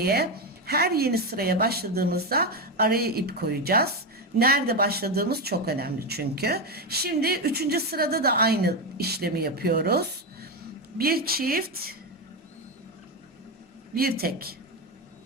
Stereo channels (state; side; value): normal; both; correlation 0.11